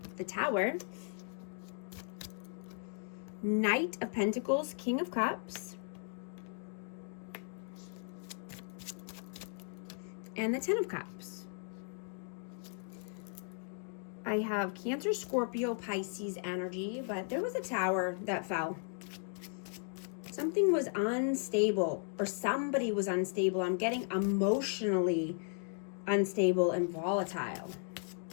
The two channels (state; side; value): silent; right; 54 dB below the other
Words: The Tower. Knight of Pentacles, King of Cups. And the Ten of Cups. I have Cancer, Scorpio, Pisces energy, but there was a tower that fell. Something was unstable, or somebody was unstable. I'm getting emotionally unstable and volatile.